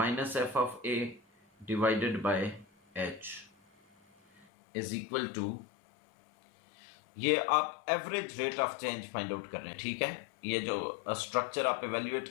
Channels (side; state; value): right; drops out; at 4.5 s